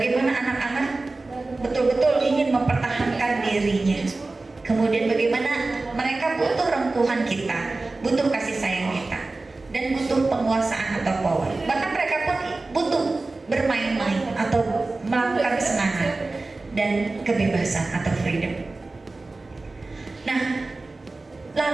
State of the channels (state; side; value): quieter; left; 3.3 dB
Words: anak-anak betul-betul ingin mempertahankan dirinya. Kemudian bagaimana mereka butuh rengkuhan kita, butuh kasih sayang kita, dan butuh penguasaan atau power. Bahkan mereka pun butuh bermain-main atau melakukan kesenangan dan kebebasan atau freedom. Nah,